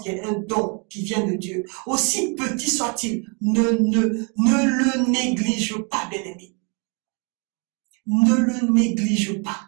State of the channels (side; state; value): left; quieter; 34.9 dB